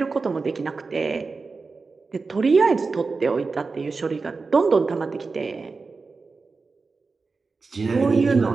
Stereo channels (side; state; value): left; quieter; 4.3 dB